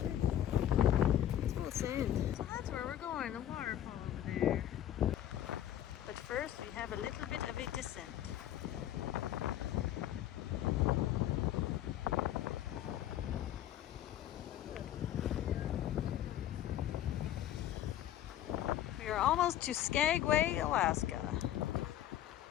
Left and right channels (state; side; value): quieter; right; 11.9 dB